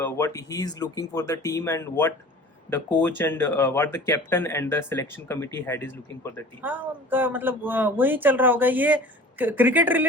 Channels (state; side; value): normal; both; correlation 0.43